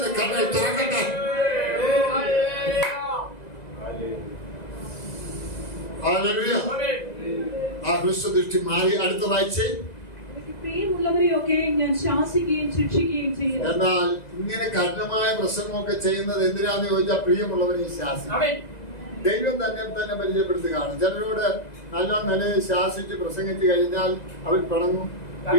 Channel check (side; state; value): right; late; 2.0 ms